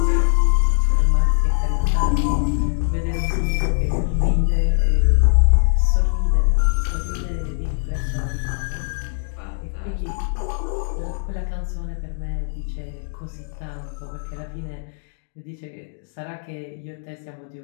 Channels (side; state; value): right; silent; digital silence